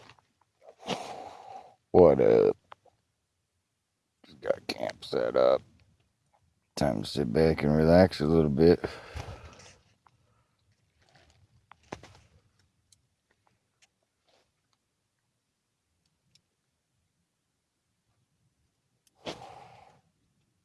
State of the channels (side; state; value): both; identical; correlation 1.00